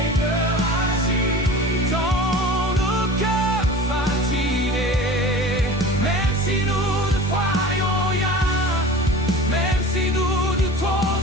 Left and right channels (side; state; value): both; normal; correlation 0.38